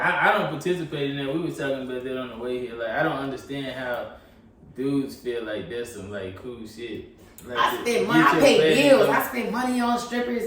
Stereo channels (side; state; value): both; identical; correlation 1.00